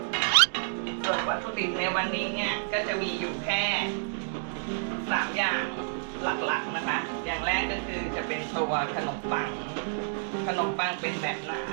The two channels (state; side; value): silent; left; digital silence